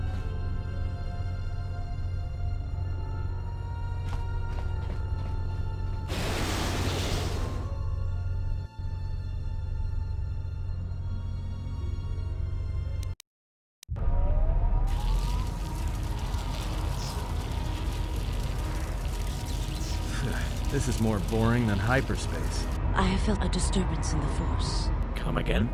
This is more boring than hyperspace. I have felt a disturbance in the Force. Come again?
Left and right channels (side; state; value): both; identical; correlation 1.00